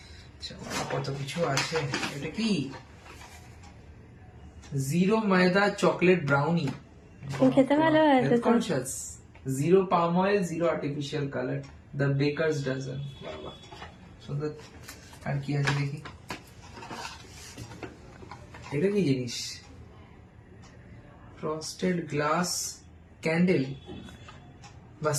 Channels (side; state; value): both; identical; correlation 1.00